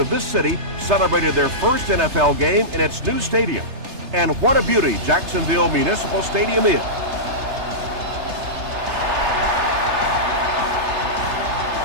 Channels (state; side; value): late; left; 3.3 ms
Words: this city celebrated their first NFL game in its new stadium. And what a beauty Jacksonville Municipal Stadium is.